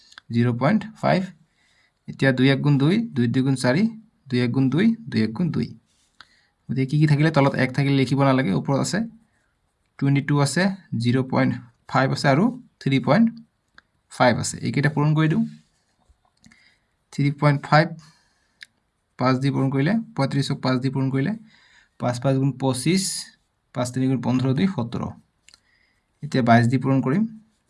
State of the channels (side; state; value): both; identical; correlation 1.00